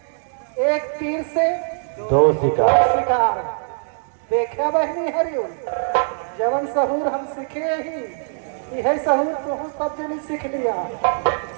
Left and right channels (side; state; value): left; silent; digital silence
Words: एक तीर से दो शिकार। शिकार। देखा बहनी हरिओ, जवन सहूर हम सीखे ही यही सहूर तुह सब जनी सीख लिया।